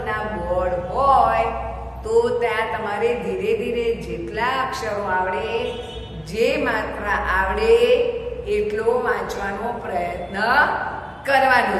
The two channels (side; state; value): both; identical; correlation 1.00